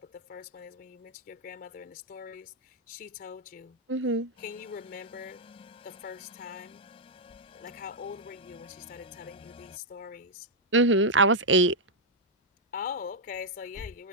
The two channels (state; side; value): normal; both; correlation -0.04